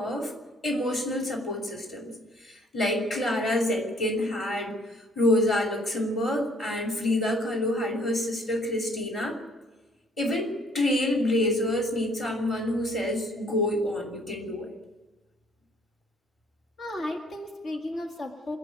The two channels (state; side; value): normal; both; correlation 0.61